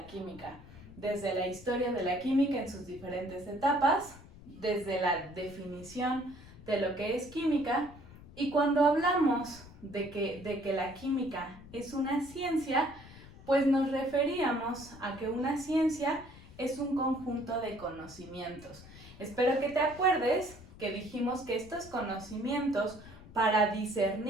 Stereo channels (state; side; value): noise; left; rumble, 19 dB below the sound